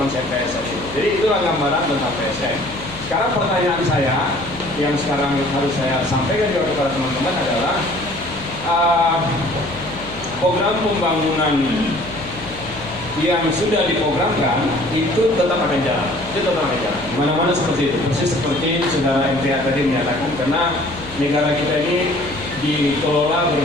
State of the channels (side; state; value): left; noise; hum, 15 dB below the sound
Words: PSN itu. Jadi itulah gambaran tentang PSN. Sekarang pertanyaan saya yang sekarang harus saya sampaikan juga kepada teman-teman adalah program pembangunan yang sudah diprogramkan itu tetap akan jalan. Itu tetap akan jalan. Mana-mana seperti itu. Persis seperti saudara MTA tadi menyatakan, karena negara kita ini dikelola